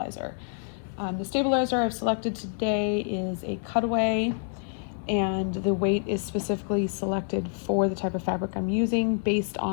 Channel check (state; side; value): silent; right; 60 dB below the other